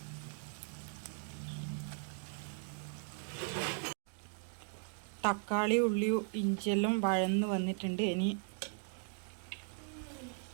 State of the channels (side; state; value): left; silent; 52 dB below the other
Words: തക്കാളി, ഉള്ളി, ഇഞ്ചിയെല്ലാം വഴന്ന് വന്നിട്ടുണ്ട്. ഇനി